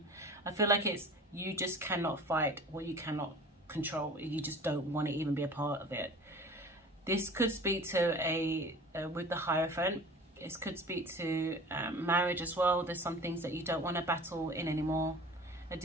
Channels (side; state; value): both; normal; correlation 0.41